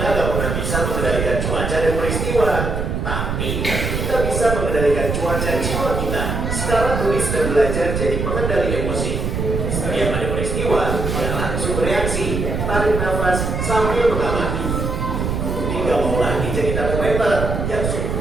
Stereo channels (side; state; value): right; noise; rumble, 2 dB below the sound